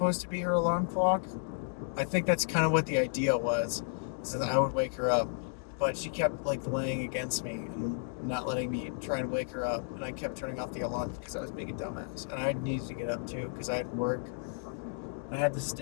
to be her alarm clock? I think that's kind of what the idea was, so that I would wake her up. But she kept like laying against me and not letting me try and wake her up, and I kept turning off the alarm because I was being a dumbass, and I needed to get up too because I had work. I had to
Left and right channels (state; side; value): silent; right; digital silence